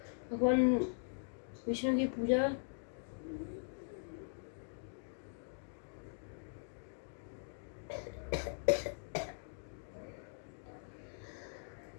भगवान विष्णु की पूजा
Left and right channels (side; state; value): right; silent; digital silence